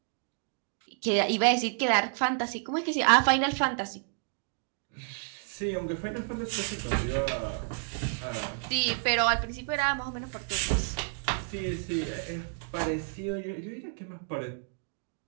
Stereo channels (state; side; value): silent; left; 58 dB below the other